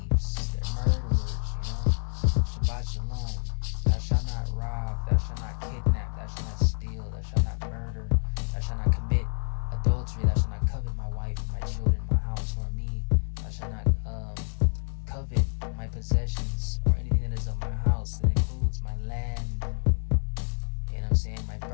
They're murderers. You know, Shabbat Shalom. Thou shalt not rob. Thou shalt not kidnap. Thou shalt not steal. Thou shalt not murder. Thou shalt not commit adultery. Thou shalt not covet my wife, my children, my house, nor me. Thou shalt not covet my possessions or anything that is of my house. That includes my land. You know what I'm saying? My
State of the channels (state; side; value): silent; right; digital silence